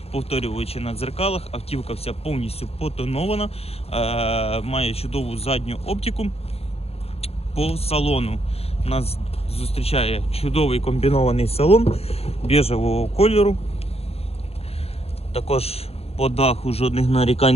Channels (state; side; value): late; right; 0.29 ms